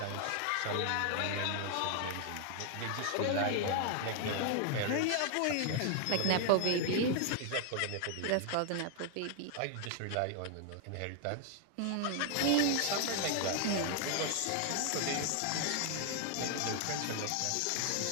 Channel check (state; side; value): different; both; correlation 0.00